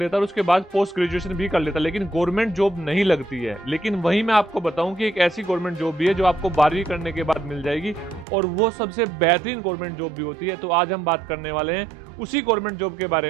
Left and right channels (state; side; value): drops out; left; at 8.2 s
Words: है और उसके बाद पोस्ट ग्रेजुएशन भी कर लेता है, लेकिन गवर्नमेंट जॉब नहीं लगती है। लेकिन वहीं मैं आपको बताऊं कि एक ऐसी गवर्नमेंट जॉब भी है जो आपको 12वीं करने के बाद मिल जाएगी और वो सबसे बेहतरीन गवर्नमेंट जॉब भी होती है। तो आज हम बात करने वाले हैं उसी गवर्नमेंट जॉब के बारे